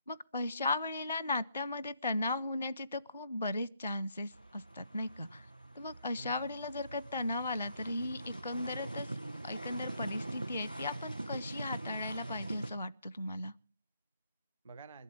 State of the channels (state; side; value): inverted; both; correlation -0.73